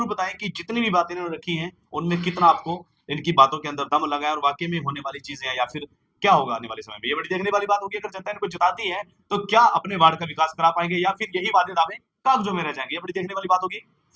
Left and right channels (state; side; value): identical; both; correlation 1.00